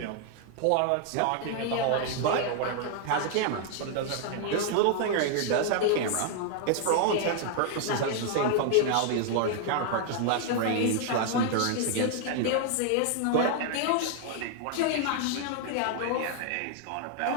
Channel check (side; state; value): both; different; correlation 0.00